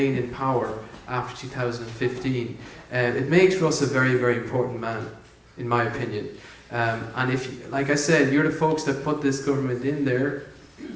in power after 2015. It makes Russ a very, very important man, in my opinion. And if, like I said, you're the folks that put this government in there,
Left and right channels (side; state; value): both; identical; correlation 1.00